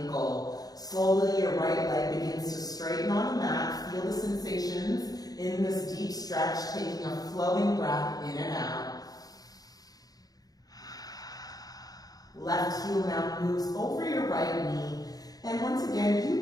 Slowly, your right leg begins to straighten on the mat. Feel the sensations in this deep stretch, taking a flowing breath in and out. Left heel now moves over your right knee. And once again,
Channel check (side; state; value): right; late; 0.18 ms